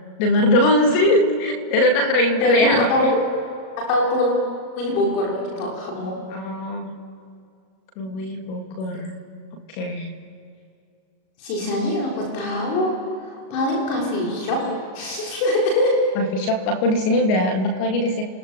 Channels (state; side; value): late; right; 37 ms